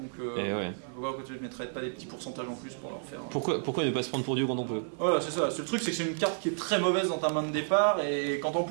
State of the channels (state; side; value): silent; left; digital silence